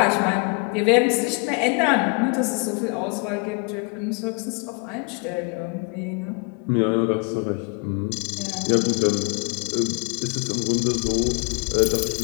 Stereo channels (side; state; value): right; quieter; 33.8 dB